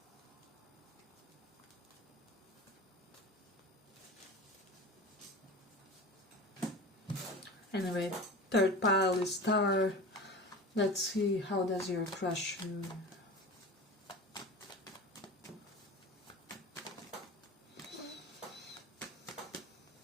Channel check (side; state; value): both; normal; correlation 0.33